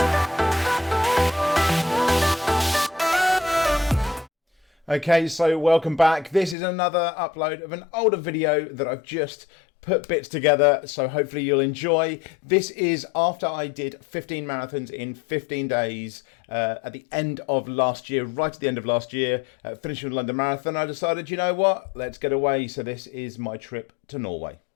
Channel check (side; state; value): right; drops out; at 6.6 s